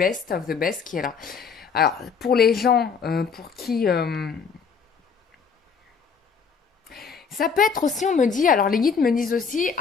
of the best qui est là. Alors, pour les gens pour qui... ça peut être aussi, on me dit, alors les guides me disent aussi,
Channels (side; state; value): right; quieter; 5.8 dB